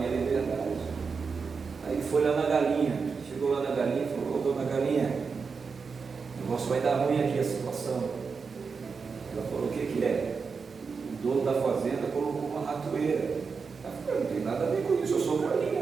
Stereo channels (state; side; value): quieter; left; 5.2 dB